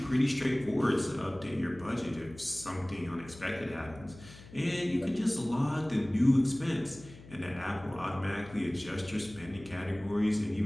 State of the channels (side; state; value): left; noise; hum, 19 dB below the sound